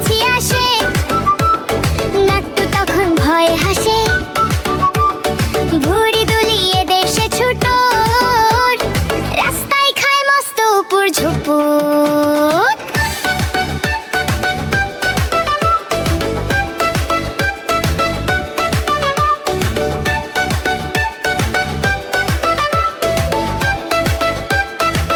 আসে নাট্টু তখন ভয়ে হাসে ভুঁড়ি দুলিয়ে দেশে ছুটো রাস্তায় খায় মস্ত উপর ঝুপুর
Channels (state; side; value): identical; both; correlation 1.00